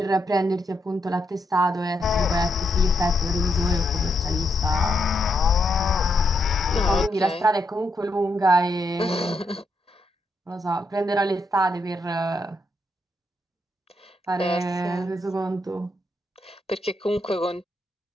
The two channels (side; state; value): both; normal; correlation 0.80